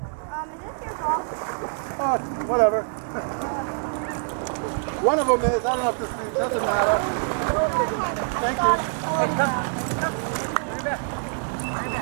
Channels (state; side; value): silent; left; 62 dB below the other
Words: your ball? Oh, whatever. One of them is. I don't know if this doesn't matter. Thank you.